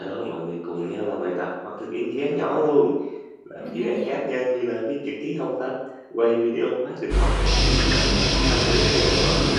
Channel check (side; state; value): both; identical; correlation 1.00